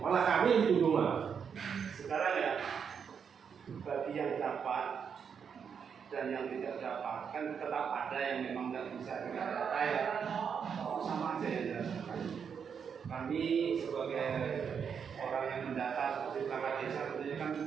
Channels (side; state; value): left; quieter; 6.9 dB